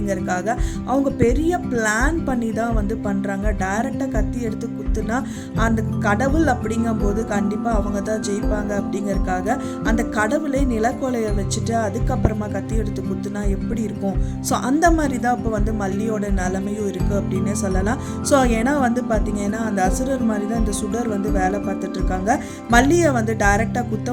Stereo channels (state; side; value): identical; both; correlation 1.00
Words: அவங்க பெரிய பிளான் பண்ணி தான் வந்து பண்ணுறாங்க. டைரெக்டாக கத்தி எடுத்து குத்துனா அந்த கடவுள் அப்படிங்கும்போது கண்டிப்பாக அவங்க தான் ஜெயிப்பாங்க அப்படிங்கிறதுக்காக அந்த கடவுளை நிலக்கொலையை வச்சுட்டு அதுக்கப்புறமா கத்தி எடுத்து குத்துனா எப்படி இருக்கும். ஸோ அந்த மாதிரி தான் இப்போ வந்து மல்லியோட நிலைமையும் இருக்குது அப்படின்னு சொல்லலாம். ஸோ ஏன்னா வந்து பார்த்தீங்கன்னா அந்த அசுரர் மாதிரி தான் இந்த சுடர் வந்து வேலை பார்த்துட்டு இருக்காங்க. மல்லியை வந்து டைரெக்டாக குத்த